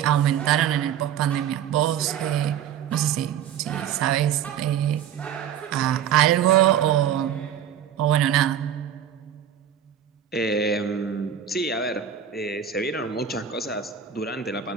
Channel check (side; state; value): left; quieter; 9.2 dB